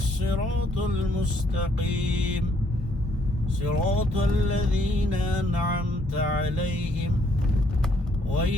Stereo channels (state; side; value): normal; both; correlation 0.68